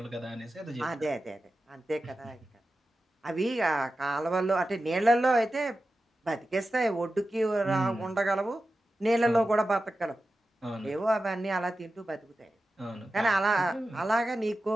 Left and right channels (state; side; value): normal; both; correlation 0.93